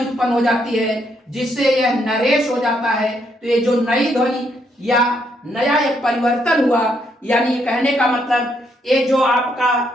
उत्पन्न हो जाती है जिससे यह नरेश हो जाता है। तो ये जो नई ध्वनि या नया एक परिवर्तन हुआ, यानी ये कहने का मतलब ये जो आपका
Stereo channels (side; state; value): both; normal; correlation 0.74